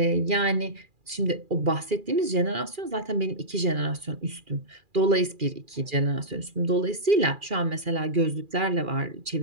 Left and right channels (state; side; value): late; left; 2.4 ms